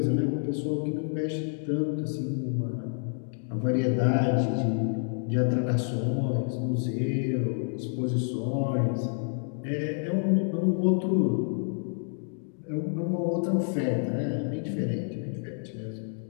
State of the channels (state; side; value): silent; right; 59 dB below the other